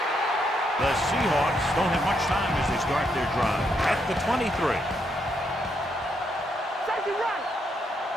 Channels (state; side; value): normal; both; correlation 0.77